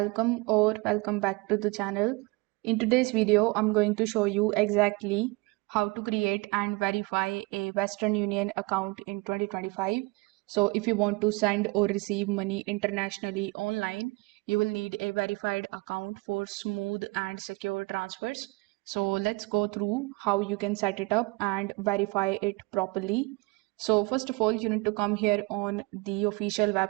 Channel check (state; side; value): quieter; left; 26.1 dB